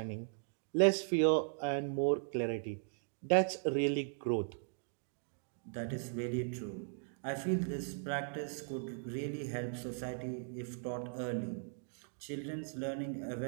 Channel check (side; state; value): left; silent; digital silence